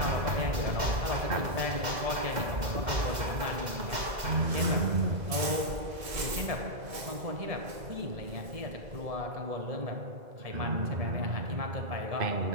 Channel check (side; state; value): left; late; 2.0 ms